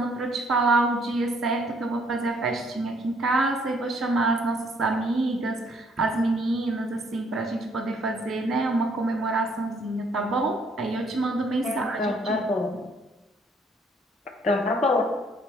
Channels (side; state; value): both; normal; correlation 0.65